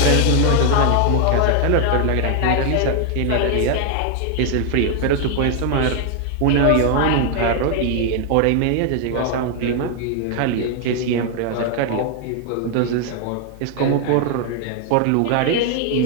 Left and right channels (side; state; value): both; different; correlation 0.00